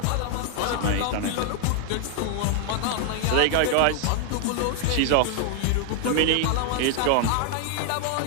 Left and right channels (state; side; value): different; both; correlation 0.00